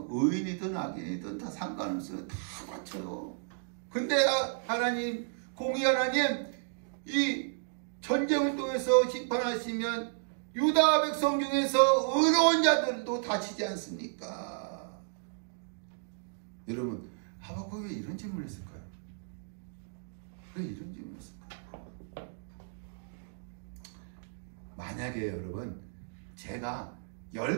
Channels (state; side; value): silent; left; digital silence